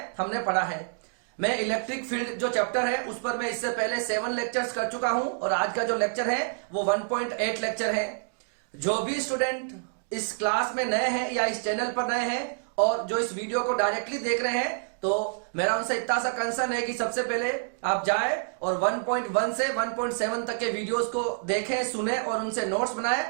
हमने पढ़ा है। मैं इलेक्ट्रिक फील्ड जो चैप्टर है उस पर मैं इससे पहले 7 लेक्चर्स कर चुका हूं और आज का जो लेक्चर है वो 1.8 लेक्चर है। जो भी स्टूडेंट इस क्लास में नए हैं या इस चैनल पर नए हैं और जो इस वीडियो को डायरेक्टली देख रहे हैं, तो मेरा उनसे इतना सा कंसर्न है कि सबसे पहले आप जाएं और 1.1 से 1.7 तक के वीडियोस को देखें, सुने और उनसे नोट्स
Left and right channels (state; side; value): silent; left; digital silence